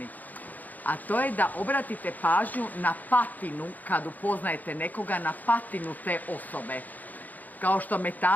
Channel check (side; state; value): right; late; 0.082 ms